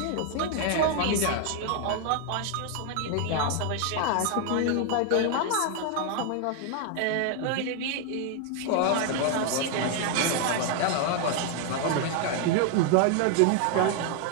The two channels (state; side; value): different; both; correlation 0.00